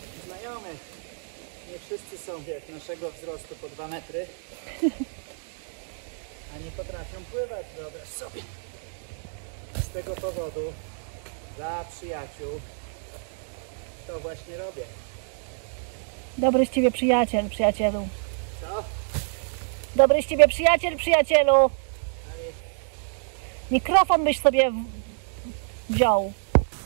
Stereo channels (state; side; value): silent; left; digital silence